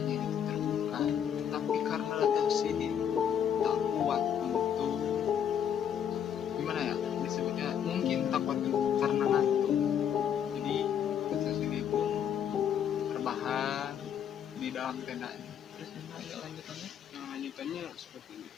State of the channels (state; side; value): quieter; right; 8.8 dB